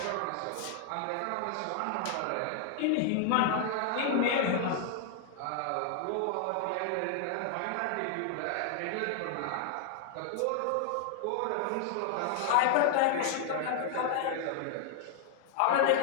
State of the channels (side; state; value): both; different; correlation 0.00